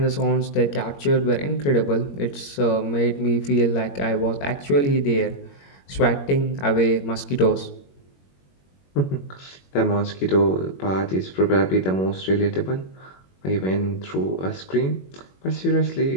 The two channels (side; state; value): right; late; 21 ms